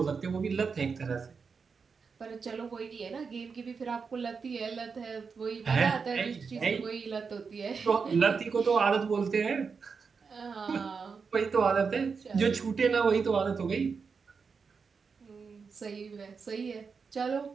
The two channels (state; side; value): quieter; left; 5.4 dB